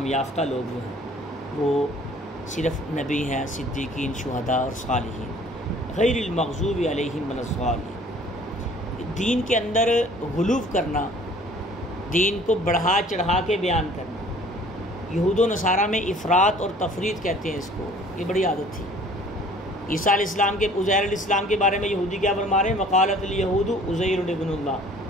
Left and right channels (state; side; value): normal; both; correlation 0.53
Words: یافتہ لوگ جو ہیں وہ صرف نبی ہیں، صدیقین، شہداء اور صالحین، غیر المغضوب علیہم ولا الضالین۔ دین کے اندر غلو کرنا، دین کو بڑھا چڑھا کے بیان کرنا، یہود و نصارہ میں افراط اور تفریط کہتے ہیں اس کو، یہ بڑی عادت تھی۔ عیسیٰ علیہ السلام کے، عزیر علیہ السلام کے بارے میں یہودی کیا فرما رہے ہیں؟ وقالت الیہود عزیر ابن اللہ،